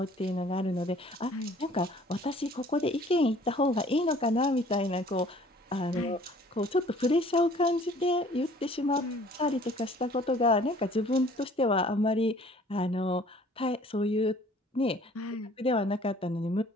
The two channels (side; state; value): both; normal; correlation 0.54